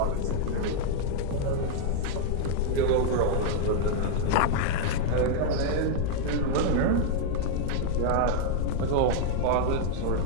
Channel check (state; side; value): different; both; correlation -0.01